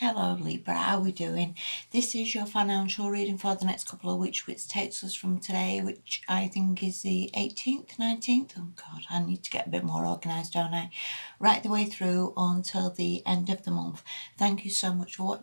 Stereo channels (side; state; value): both; inverted; correlation -1.00